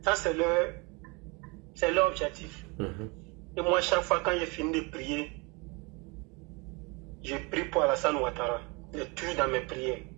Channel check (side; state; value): left; quieter; 28.6 dB